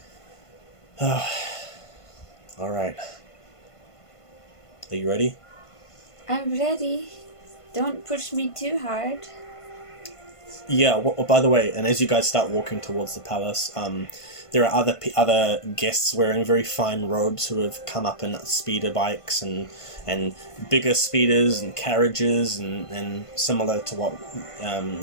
Alright. Are you ready? I'm ready. Don't push me too hard. Yeah, by the way, and as you guys start walking towards the palace, there are other guests wearing very fine robes who have come up in speeder bikes and bigger speeders and carriages and similar to what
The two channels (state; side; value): late; right; 1.5 ms